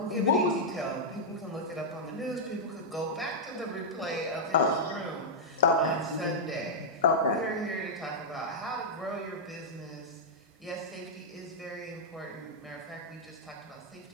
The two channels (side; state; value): both; normal; correlation -0.07